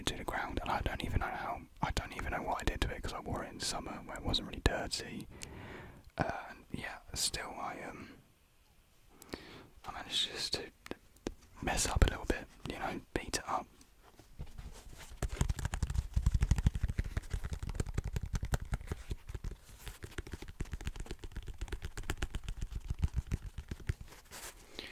to the ground, and I don't even know what I did to it because I wore it in summer where it wasn't really dirty. Yeah, still I managed just to mess up a little bit, beat it up.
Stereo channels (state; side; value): identical; both; correlation 1.00